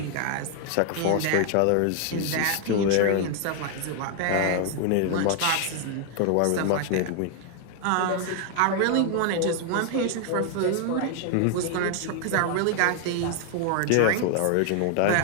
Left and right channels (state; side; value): different; both; correlation 0.00